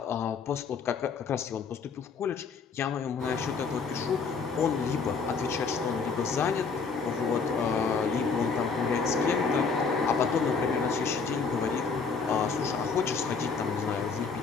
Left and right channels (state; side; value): quieter; right; 5.1 dB